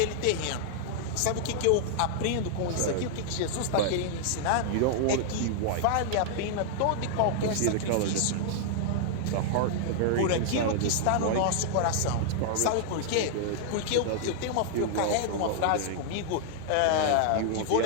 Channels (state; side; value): different; both; correlation -0.01